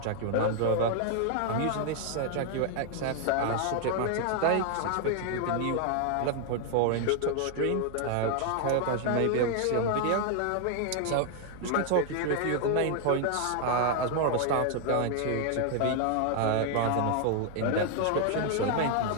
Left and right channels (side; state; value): both; different; correlation 0.00